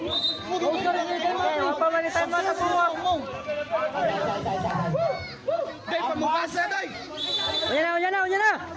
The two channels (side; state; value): both; identical; correlation 1.00